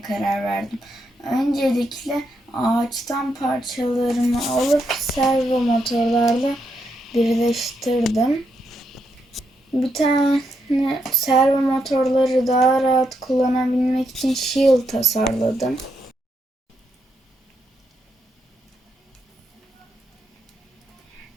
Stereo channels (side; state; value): both; normal; correlation 0.80